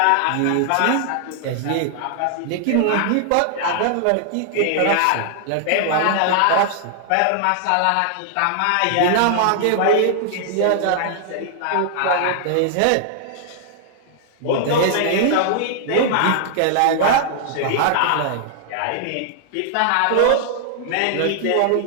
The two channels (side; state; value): both; different; correlation -0.01